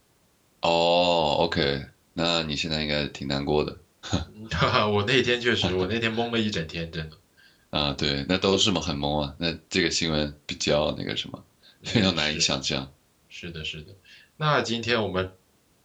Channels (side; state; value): both; identical; correlation 1.00